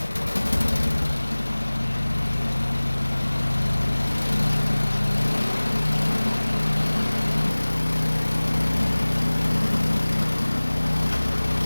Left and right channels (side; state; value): both; inverted; correlation -1.00